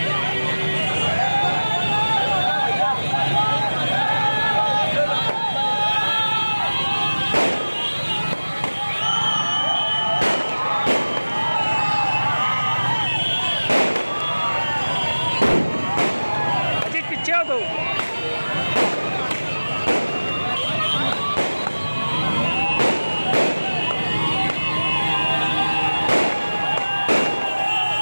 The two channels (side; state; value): both; inverted; correlation -1.00